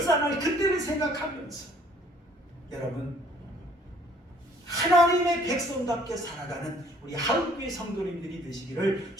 그때를 생각하면서 여러분 하나님의 백성답게 살아가는 우리 한국교회 성도님들이 되시기를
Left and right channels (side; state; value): both; normal; correlation 0.59